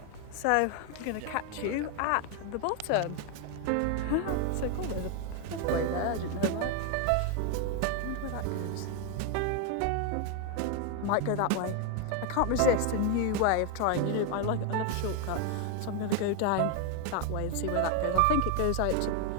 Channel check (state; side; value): different; both; correlation 0.01